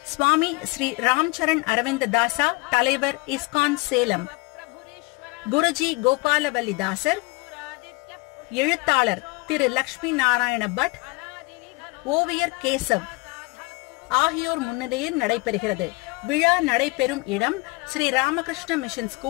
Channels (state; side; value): quieter; right; 26.2 dB